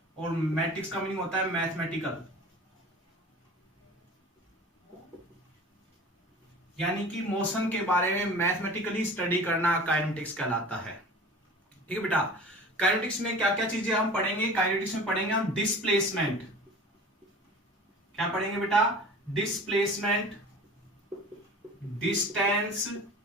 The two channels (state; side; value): normal; both; correlation 0.40